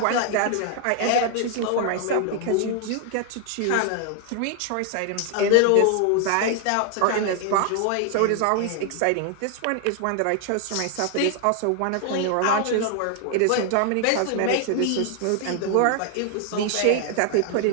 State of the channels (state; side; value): different; both; correlation 0.00